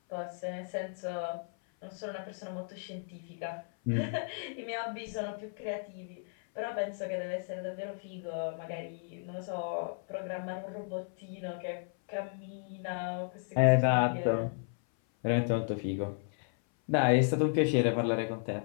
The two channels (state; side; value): silent; right; 55 dB below the other